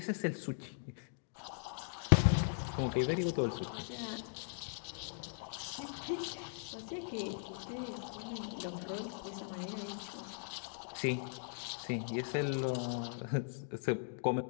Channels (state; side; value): silent; right; digital silence